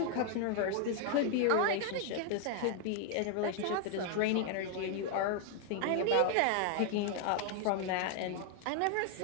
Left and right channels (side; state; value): both; different; correlation 0.00